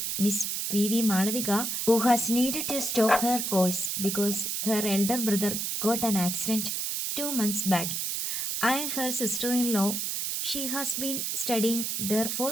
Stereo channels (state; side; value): noise; right; hiss, 1 dB below the sound